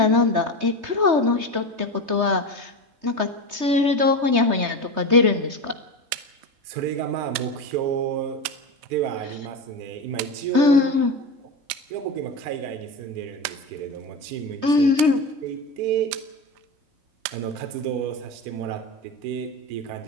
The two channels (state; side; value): late; left; 3.2 ms